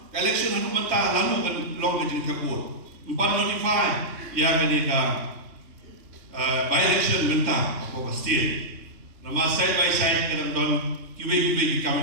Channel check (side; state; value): left; late; 3.6 ms